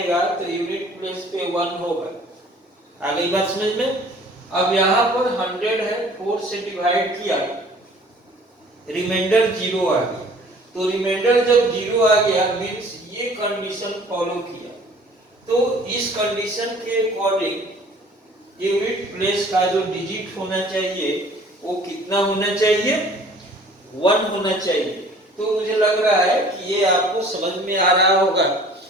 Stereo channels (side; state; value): both; normal; correlation 0.51